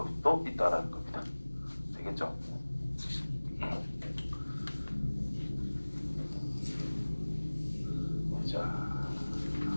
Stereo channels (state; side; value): inverted; both; correlation -1.00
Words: 또 있다라는 겁니다. 되겠죠? 자,